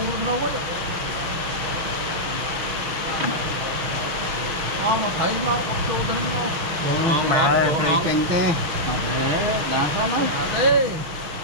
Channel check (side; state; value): left; late; 6.3 ms